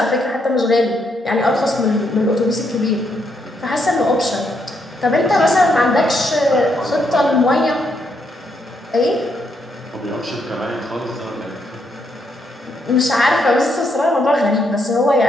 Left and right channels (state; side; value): normal; both; correlation 0.77